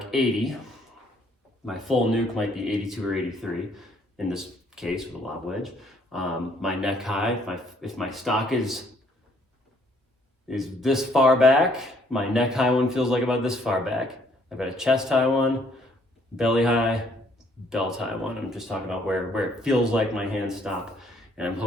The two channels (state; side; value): normal; both; correlation 0.65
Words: 80. My full nuke might be 82 or 83 in this case with a lob wedge. My neck high, if my stock is this far back, my neck high one feels like about this far back. I've got a chest high one, belly high, belt high one. I'm just talking about where it feels like my hands stop. And I'm